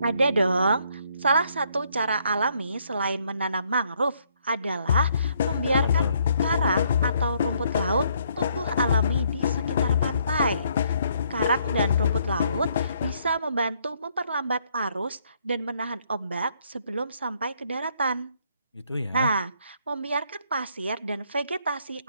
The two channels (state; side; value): inverted; both; correlation -0.69